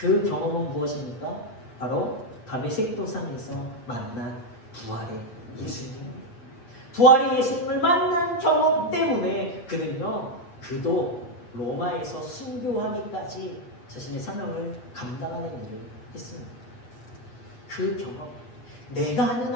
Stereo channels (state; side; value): late; right; 8.4 ms